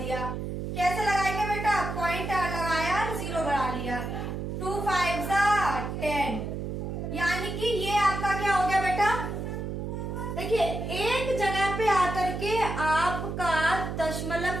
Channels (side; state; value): right; noise; hum, 4 dB below the sound